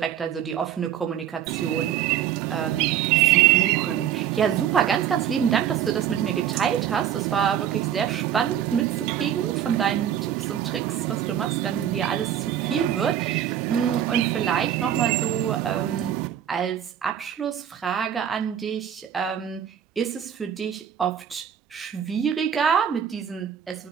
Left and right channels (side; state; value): left; quieter; 9.8 dB